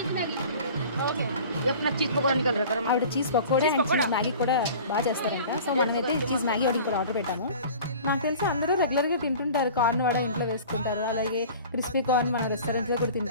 ఆవిడ cheese pakoda and cheese Maggi కూడా బాగా చేస్తారంట. సో మనమైతే చీజ్ మ్యాగీ ఒకటి కూడా ఆర్డర్ పెట్టాము. నాకు తెలిసి అందరూ రెగ్యులర్గా తింటుంటారు, కార్న్ వడ ఇంట్లో వేసుకుంటారు, అలాగే క్రిస్పీ కార్న్ మన రెస్టారెంట్లో కూడా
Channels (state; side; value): inverted; both; correlation -0.42